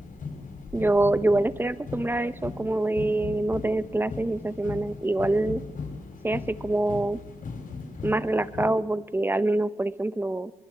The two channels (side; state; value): both; normal; correlation 0.92